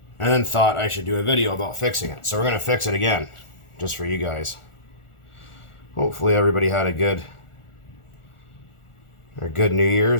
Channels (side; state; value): right; late; 1.4 ms